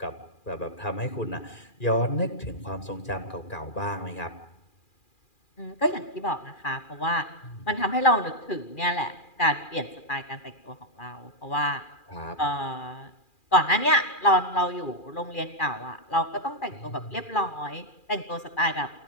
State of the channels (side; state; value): right; late; 2.4 ms